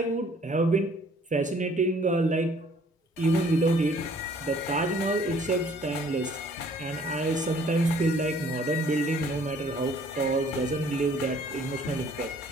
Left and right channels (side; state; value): both; normal; correlation 0.58